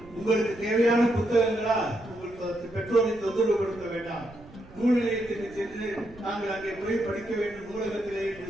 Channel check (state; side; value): noise; right; rumble, 22 dB below the sound